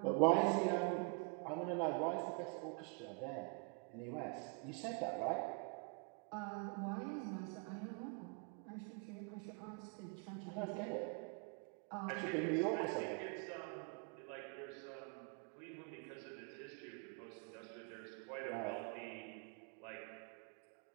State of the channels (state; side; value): quieter; left; 36.4 dB